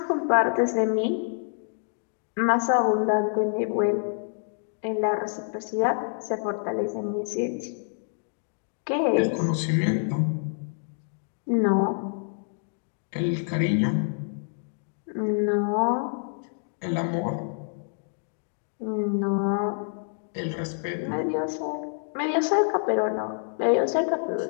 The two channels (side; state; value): right; silent; digital silence